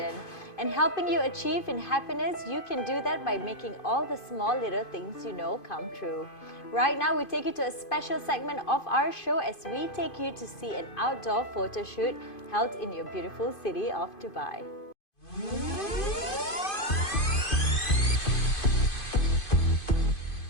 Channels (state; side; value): late; right; 2.5 ms